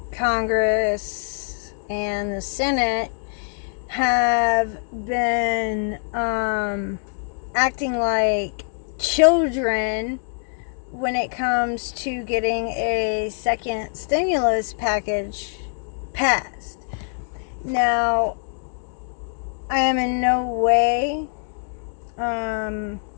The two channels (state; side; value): silent; right; digital silence